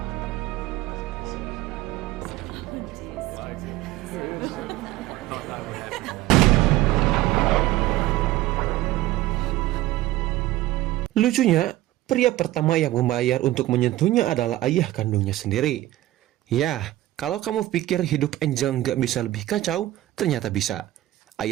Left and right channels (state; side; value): quieter; left; 15.7 dB